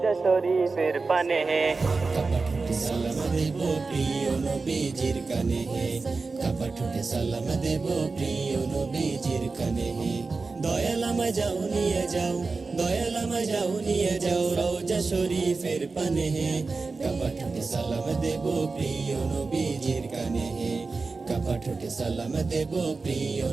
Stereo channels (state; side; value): quieter; left; 4.1 dB